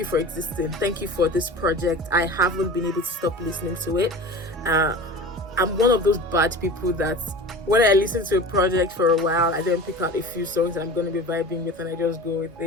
for existing. Thank you for this project. I haven't been able to stop listening to it. I'm one of those bad people that when I listen to a project for a while, I then pick out a few songs that I'm going to be vibing with and I just go with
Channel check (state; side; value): normal; both; correlation 0.35